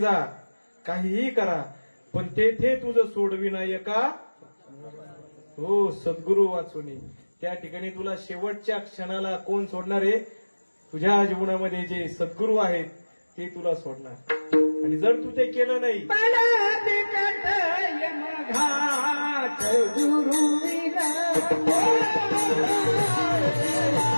काहीही करा, पण तेथे तुझं सोडविनायका हो सद्गुरू वाचुनी. त्या ठिकाणी तुला शेवटच्या क्षणाला कोण सोडणार आहे? तुझ्या जीवनामध्ये जे सद्गुरू आहेत ते तुला सोडणार. आणि जर तू ते केलं नाही,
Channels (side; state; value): both; inverted; correlation -1.00